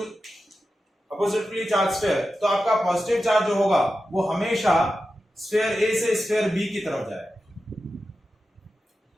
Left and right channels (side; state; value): both; normal; correlation 0.91